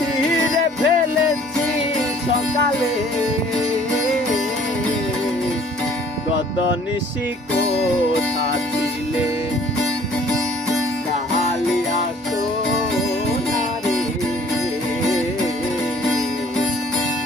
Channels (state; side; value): normal; both; correlation 0.55